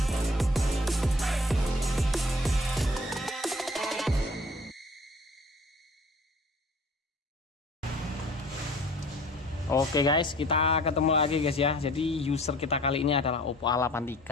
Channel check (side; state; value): both; normal; correlation 0.49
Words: Oke guys, kita ketemu lagi guys ya. Jadi user kita kali ini adalah Oppo